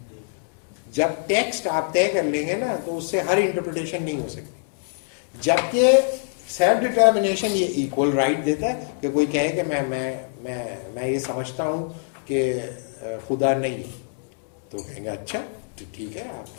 جب ٹیکسٹ آپ طے کر لیں گے نا تو اس سے ہر انٹرپریٹیشن نہیں ہو سکتی. جبکہ سیلف ڈٹرمنیشن یہ ایکول رائٹ دیتا ہے کہ کوئی کہے کہ میں یہ سمجھتا ہوں کہ خدا نہیں ہے, تو کہیں گے اچھا تو ٹھیک ہے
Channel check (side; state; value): right; silent; 62 dB below the other